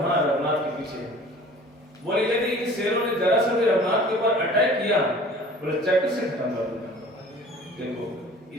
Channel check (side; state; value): both; normal; correlation 0.46